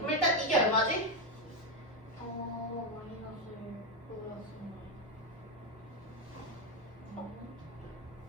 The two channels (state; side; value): normal; both; correlation 0.07